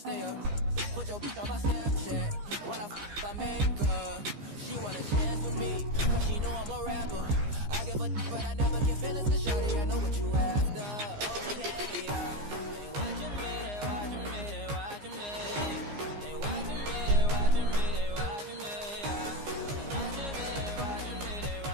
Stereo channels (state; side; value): late; left; 15 ms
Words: up. Put your bitch on my Snapchat, while I make her. She want a chance with me, cause she know I'm a rapper. I give a but I never get feelings, cause shawty, I know what you after. Okay, yeah. They watching me, they watching me, they watching me. They watching me, they watching me, they watching me, yeah. They watching me, they watching me, they